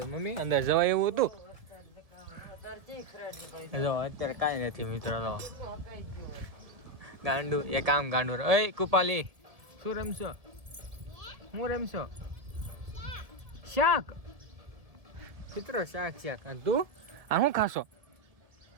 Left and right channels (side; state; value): left; late; 1.7 ms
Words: મમ્મી અંદર જવાય એવું હતું જો અત્યારે કાંઈ નથી મિત્રો તો ગાંડું એ કામ ગાંડું ઓય કુપાલી શું રમશો હું રમશો શાક મિત્રો શાક અને તું આ શું ખાશો